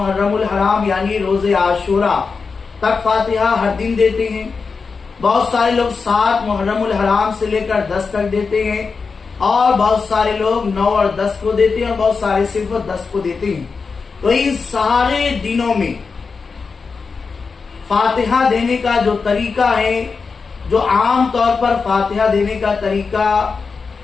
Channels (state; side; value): quieter; right; 4.9 dB